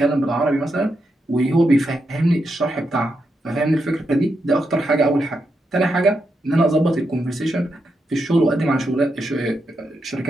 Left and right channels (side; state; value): both; normal; correlation 0.84